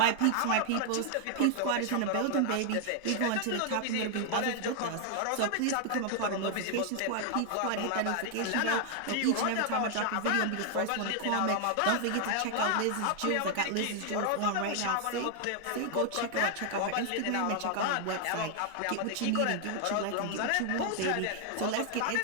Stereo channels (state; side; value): different; both; correlation 0.00